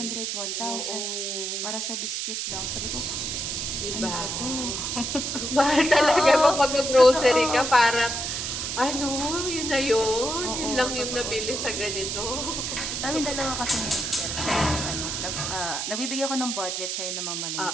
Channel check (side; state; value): right; noise; hiss, 2 dB below the sound